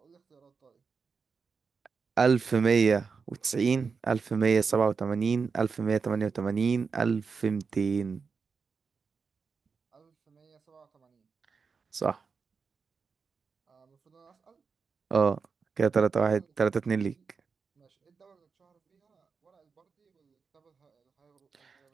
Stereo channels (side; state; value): left; quieter; 5.3 dB